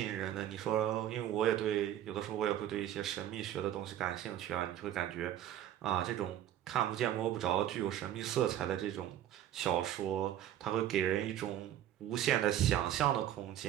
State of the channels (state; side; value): quieter; left; 11.5 dB